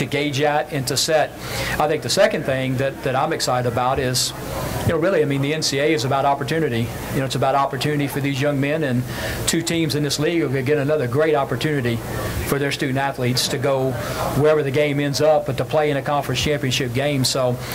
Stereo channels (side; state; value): both; identical; correlation 1.00